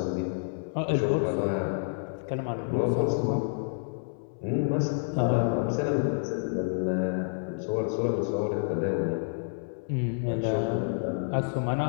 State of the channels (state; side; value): silent; right; 59 dB below the other